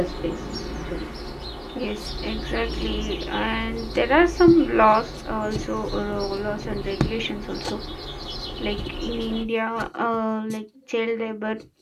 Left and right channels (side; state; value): both; identical; correlation 1.00